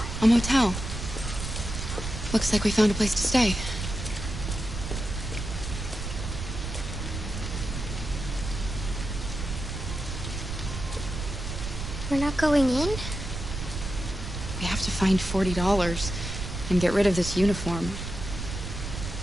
A motel. Looks like we found a place to stay. We're not going in? We have to find $40 and get rid of this uniform.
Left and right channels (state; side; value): noise; right; rumble, 6 dB below the sound